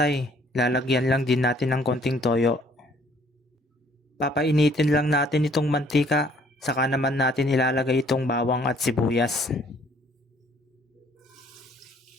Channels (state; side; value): normal; both; correlation 0.61